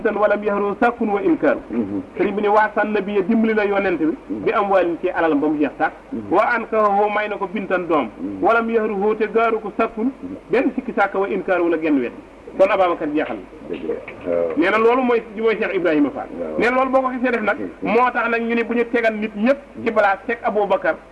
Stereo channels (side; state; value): both; identical; correlation 1.00